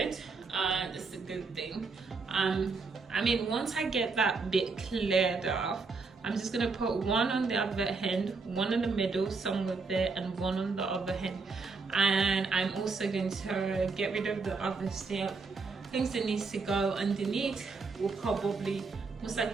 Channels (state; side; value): quieter; left; 4.4 dB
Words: It's a good thing. I mean, once I get that bit cleared off, I'm just gonna put one on the other end, one in the middle somewhere there, and one on the other end. And I'm also going to get rid of the other stuff. Things that needs to go underneath will probably most